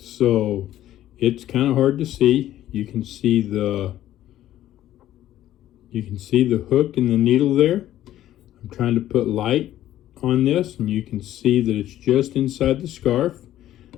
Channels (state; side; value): quieter; right; 13.0 dB